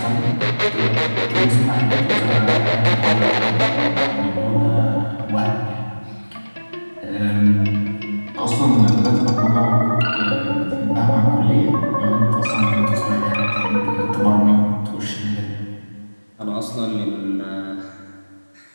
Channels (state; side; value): inverted; both; correlation -1.00